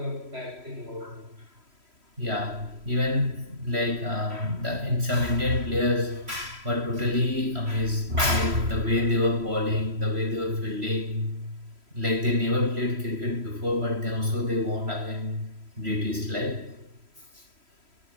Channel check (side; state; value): left; late; 3.1 ms